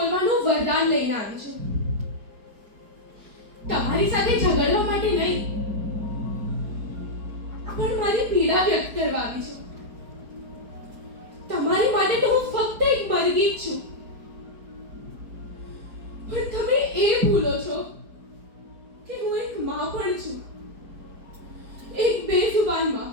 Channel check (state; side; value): late; left; 4.7 ms